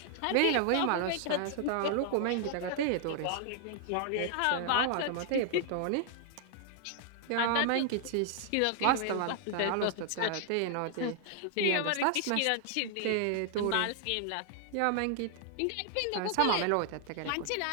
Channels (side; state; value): both; different; correlation 0.00